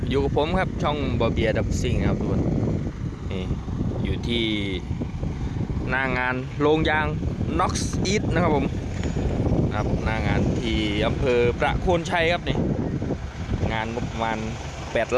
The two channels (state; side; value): identical; both; correlation 1.00